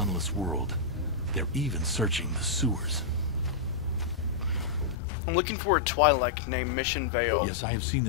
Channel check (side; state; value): right; drops out; at 5.0 s